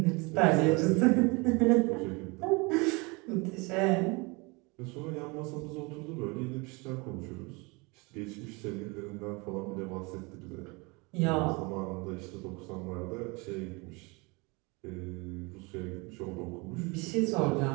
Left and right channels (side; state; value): left; quieter; 27.5 dB